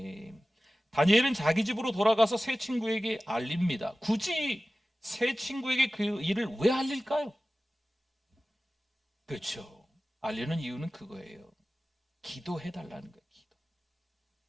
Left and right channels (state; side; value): normal; both; correlation 0.96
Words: 다니엘은 자기 집으로 돌아가서 새 친구에게 알립니다. 굳이 새 친구에게 그 일을 왜 알릴까요? 그렇죠. 알리는 이유는 그거예요. 기도해달라는 거예요. 기도.